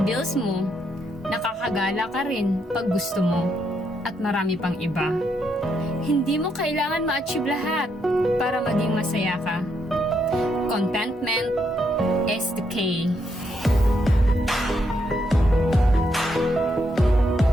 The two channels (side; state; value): both; normal; correlation 0.77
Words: bills mo, nakakagala ka rin pag gusto mo, at marami pang iba. Hindi mo kailangan ma-achieve lahat para maging masaya ka. Contentment is the key.